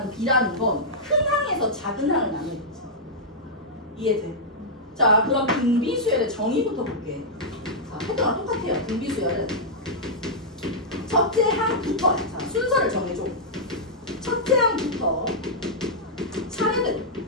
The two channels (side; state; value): both; normal; correlation -0.09